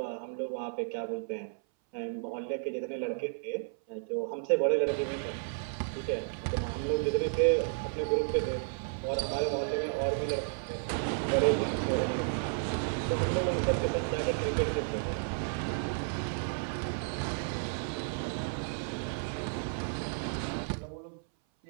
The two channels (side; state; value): left; silent; 56 dB below the other